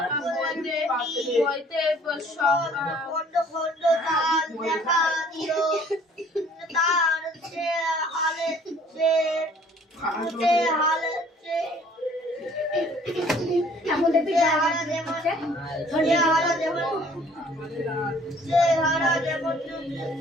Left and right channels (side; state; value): both; normal; correlation 0.56